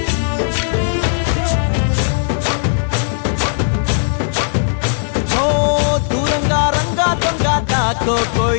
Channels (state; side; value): silent; right; digital silence